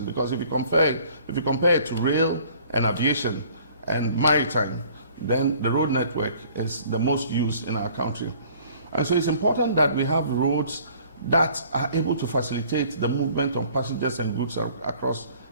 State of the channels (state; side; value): inverted; both; correlation -0.54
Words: because if you compare it to rail and aviation and maritime, then the road network is the most used in our country. And so it's important that we have roads that are able to facilitate the movement of passengers and goods across